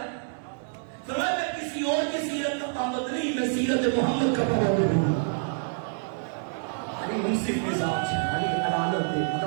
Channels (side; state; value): left; silent; 60 dB below the other